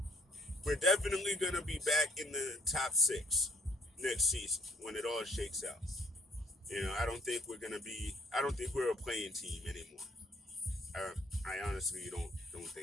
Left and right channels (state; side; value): normal; both; correlation 0.63